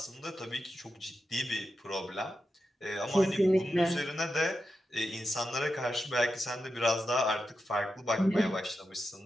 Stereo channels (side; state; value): both; normal; correlation 0.89